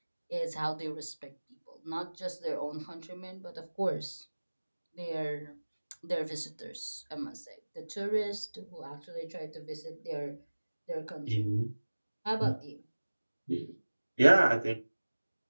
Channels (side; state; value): both; inverted; correlation -1.00